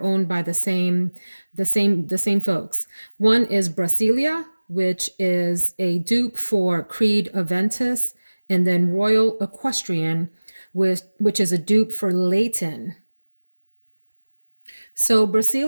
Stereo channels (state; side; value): inverted; both; correlation -1.00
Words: owned by the same folks. One is Brasilia, which is a dupe for Creed Aventus, and then Royal Equestrian, which is a dupe for Leighton. So